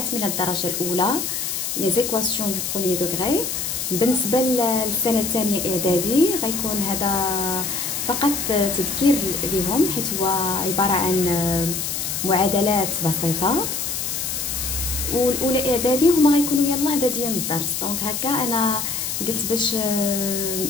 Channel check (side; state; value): left; noise; hiss, 3 dB below the sound